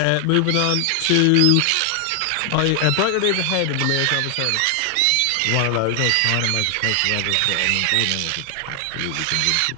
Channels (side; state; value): both; different; correlation 0.00